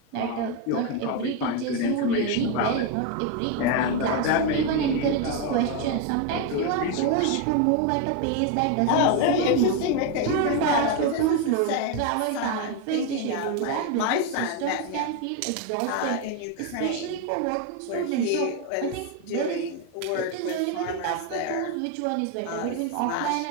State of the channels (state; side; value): different; both; correlation 0.02